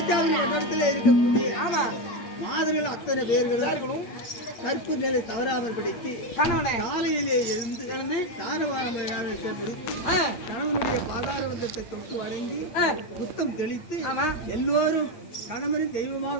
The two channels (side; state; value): right; late; 8.7 ms